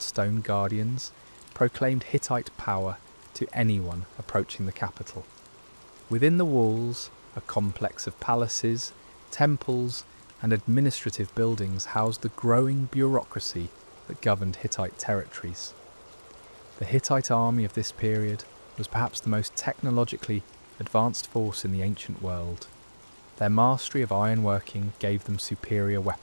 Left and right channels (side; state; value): both; inverted; correlation -1.00